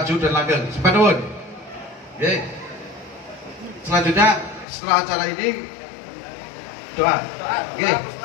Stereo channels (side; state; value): right; drops out; at 4.7 s